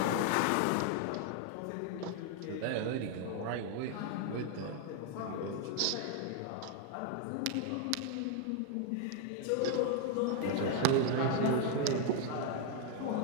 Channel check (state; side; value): different; both; correlation 0.00